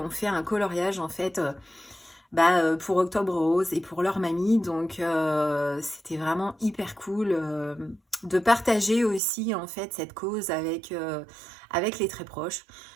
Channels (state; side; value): drops out; left; at 9.2 s